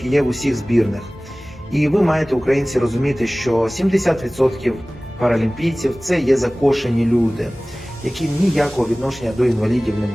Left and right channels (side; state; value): both; normal; correlation 0.98